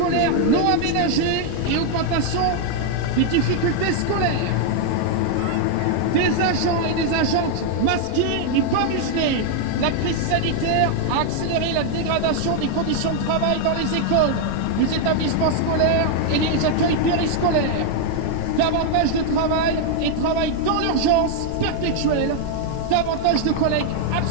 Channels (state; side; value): different; both; correlation 0.00